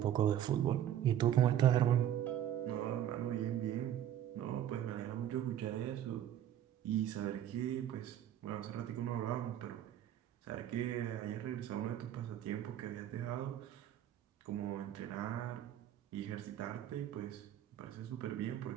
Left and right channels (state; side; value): quieter; left; 11.1 dB